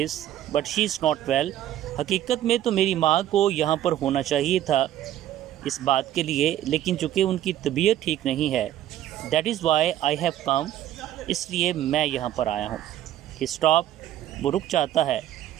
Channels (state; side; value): quieter; left; 12.3 dB